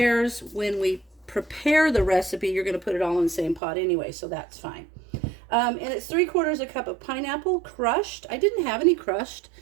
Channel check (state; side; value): drops out; left; at 3.6 s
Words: When we prepare the recipe, you're going to put it all in the same pot anyway, so that's fine. And it's 3/4 a cup of pineapple crushed. I didn't have any crushed.